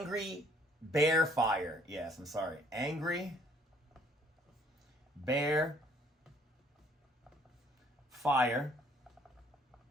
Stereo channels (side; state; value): both; normal; correlation 0.62